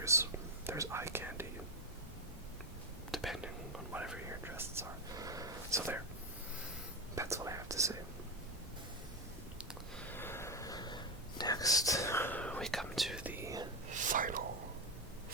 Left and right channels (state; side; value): normal; both; correlation 0.12